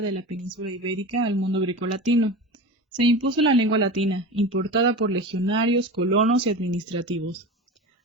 la península ibérica al mundo grecolatino. Se impuso la lengua latina, importada por legionarios, colonos y administrativos.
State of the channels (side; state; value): both; normal; correlation 0.29